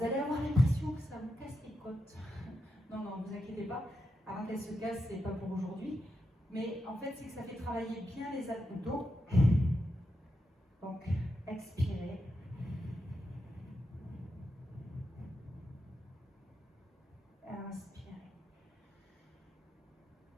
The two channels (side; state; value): both; normal; correlation 0.86